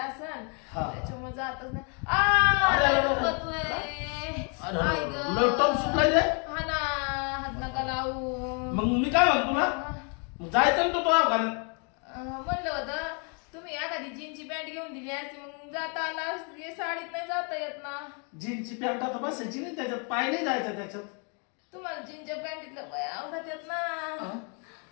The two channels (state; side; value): quieter; right; 37.4 dB